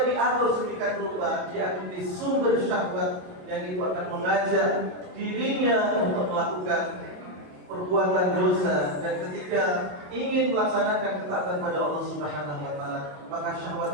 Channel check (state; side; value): late; left; 27 ms